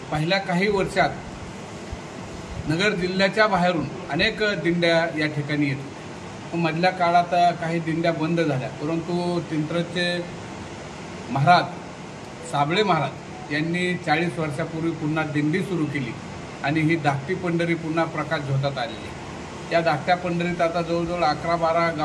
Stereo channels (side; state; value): both; identical; correlation 1.00